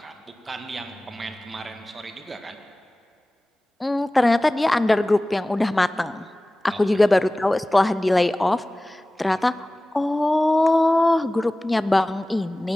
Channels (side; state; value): both; normal; correlation 0.98